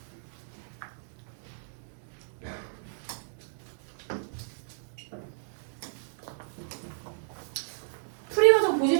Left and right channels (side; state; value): left; silent; digital silence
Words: 풀이 과정 보지